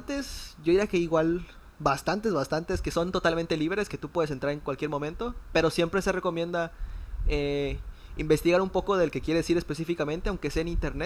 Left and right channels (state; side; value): identical; both; correlation 1.00